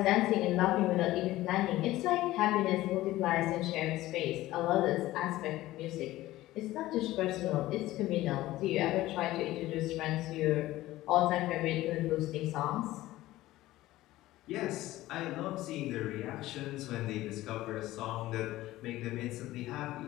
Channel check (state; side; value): quieter; right; 16.5 dB